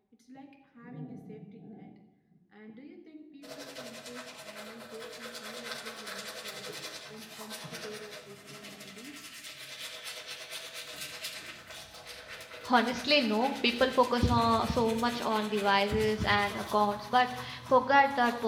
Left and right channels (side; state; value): both; identical; correlation 1.00